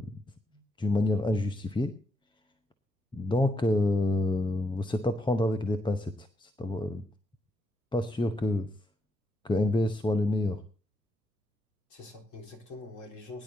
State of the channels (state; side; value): normal; both; correlation 0.80